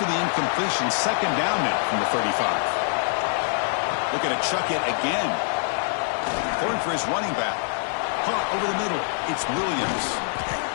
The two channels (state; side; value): silent; right; 62 dB below the other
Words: the incompletion, second down now from the 35. Looking to chuck it again. Going for his running back. Caught over the middle. It's Williams.